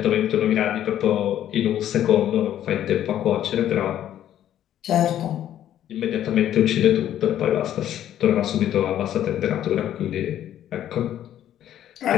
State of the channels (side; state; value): right; quieter; 11.4 dB